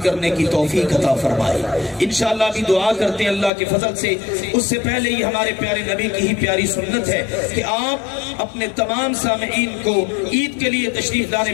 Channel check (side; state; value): right; drops out; at 3.5 s